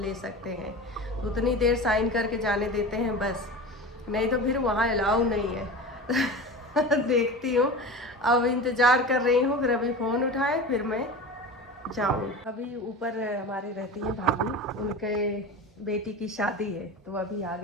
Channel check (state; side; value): normal; both; correlation 0.31